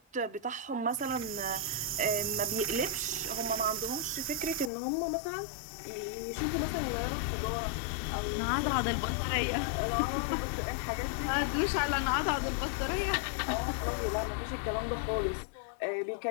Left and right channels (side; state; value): right; drops out; at 4.7 s